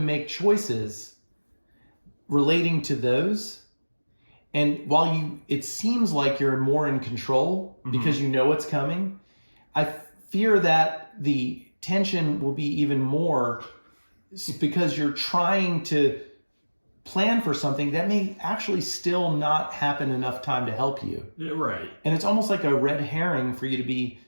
choices relating to those. And while it seems like you're more in control because you know what's coming, I fear that the tension will be even more because you're trying to plan for something that may actually still not happen enough time to help you. Yeah, right. And it's almost like a red herring for you to be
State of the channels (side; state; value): both; inverted; correlation -1.00